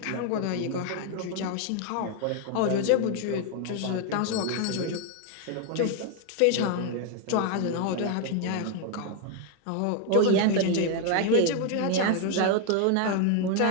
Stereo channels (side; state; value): both; different; correlation 0.01